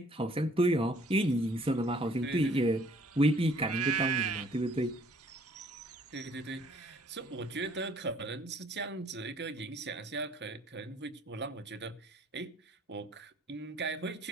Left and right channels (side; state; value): both; normal; correlation 0.59